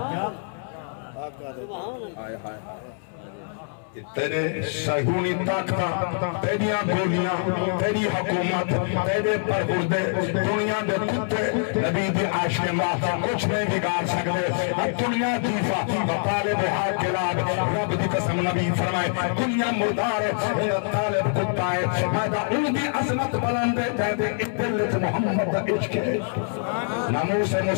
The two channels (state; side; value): silent; right; 62 dB below the other